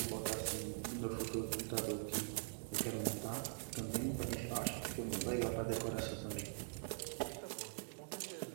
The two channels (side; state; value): left; silent; digital silence